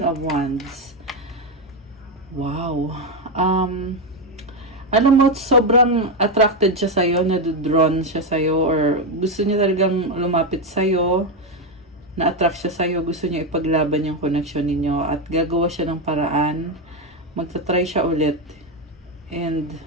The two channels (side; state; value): both; normal; correlation 0.08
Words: of Wands. Wow. Alam mo, sobrang attracted siya sa'yo, na-drawn siya sa'yo, or gusto niya talagang lumapit sa'yo, na-attract siya sa'yo, gusto niya ipaglaban yung connection ninyo, at gagawa siya ng paraan, magta-try siya ulit. And,